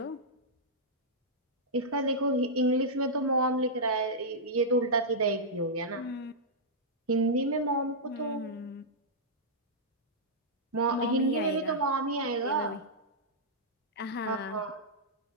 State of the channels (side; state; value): both; normal; correlation -0.10